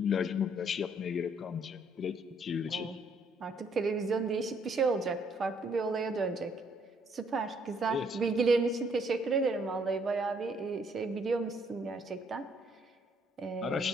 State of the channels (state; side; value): normal; both; correlation 0.67